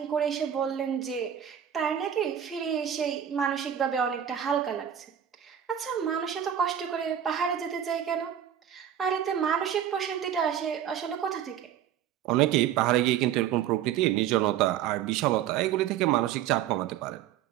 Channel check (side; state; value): left; quieter; 9.9 dB